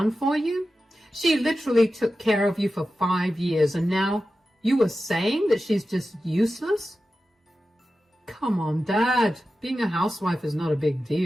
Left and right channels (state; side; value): normal; both; correlation 0.93